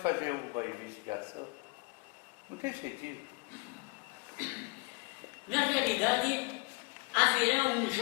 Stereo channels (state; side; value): quieter; right; 28.4 dB